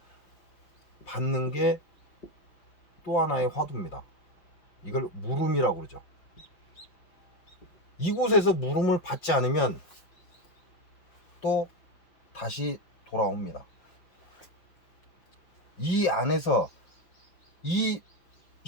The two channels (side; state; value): right; late; 5.5 ms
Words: 받는 게 또 하나의 화두입니다. 이걸 물음이라고 그러죠. 이곳에서 물음을 받지 않으면 또 다시 돌아옵니다. 이 안에서, 이